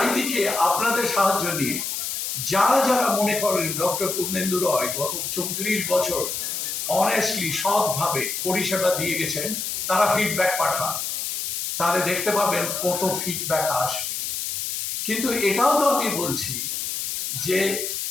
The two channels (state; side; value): noise; left; hiss, 3 dB below the sound